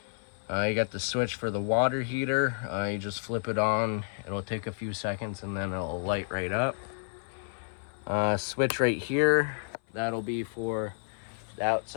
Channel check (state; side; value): silent; right; 56 dB below the other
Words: You got the switch for the water heater. You just flip it on. It'll take a few seconds, and then it'll light right up. Switch right here, that'll be for the